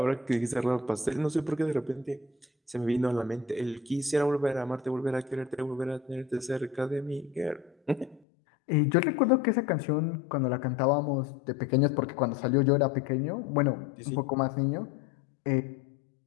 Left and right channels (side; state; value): right; drops out; at 8.2 s